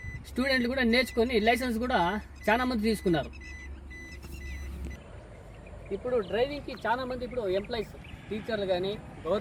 స్టూడెంట్లు కూడా నేర్చుకొని లైసెన్స్ కూడా చాలామంది తీసుకున్నారు. ఇప్పుడు డ్రైవింగ్కి చాలామంది ఇప్పుడు ఎంప్లాయీస్, టీచర్లు కానీ,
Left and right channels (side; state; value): both; identical; correlation 1.00